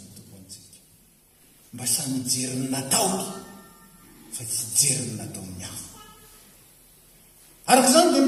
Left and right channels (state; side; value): identical; both; correlation 1.00